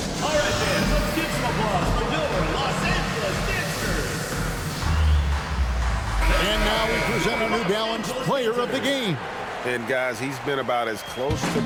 All right, fans, let's give some applause for your Los Angeles dancers. And now we present our New Balance Player of the Game. And guys, he's been about as close to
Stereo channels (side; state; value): both; identical; correlation 1.00